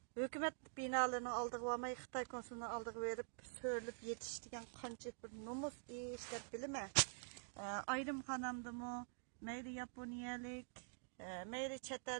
Hükümet binalarının aldığı varmay, Xitay konsulunun aldığı verip söylüp yetiştiren qancha bir nomus iş deb bilmem. Ayrım xanamdımı, meyli Yaponiyalik, meyli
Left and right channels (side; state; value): left; silent; digital silence